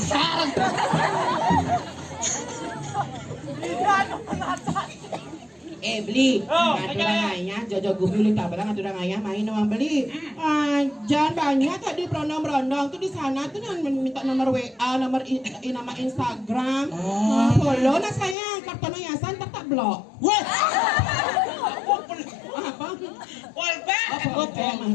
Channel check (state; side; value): drops out; right; at 18.4 s